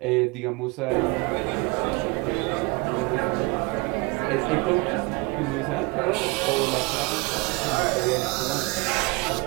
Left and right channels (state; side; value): quieter; left; 27.5 dB